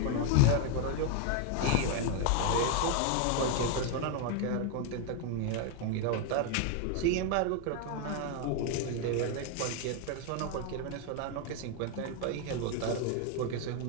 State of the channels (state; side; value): different; both; correlation 0.01